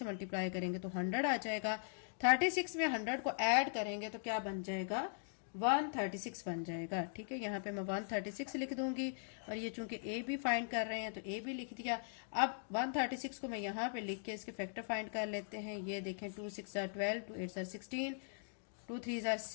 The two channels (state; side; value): silent; right; digital silence